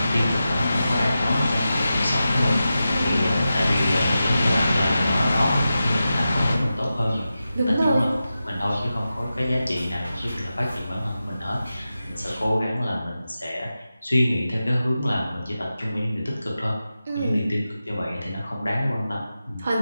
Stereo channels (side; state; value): both; inverted; correlation -0.92